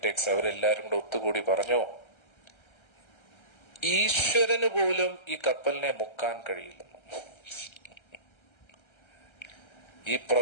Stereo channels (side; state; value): right; late; 1.3 ms